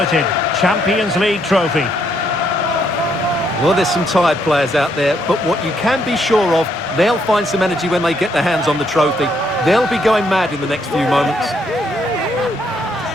Champions League trophy. Well, there's some tired players out there, but what you can be sure of, they'll find some energy when they get their hands on the trophy. They'll be going mad in the next few moments.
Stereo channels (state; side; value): normal; both; correlation 0.73